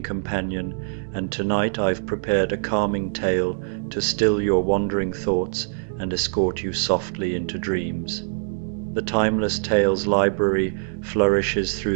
companion, and tonight I've prepared a calming tale to still your wandering thoughts and escort you softly into dreams. The Timeless Tales Library flourishes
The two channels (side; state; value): left; silent; digital silence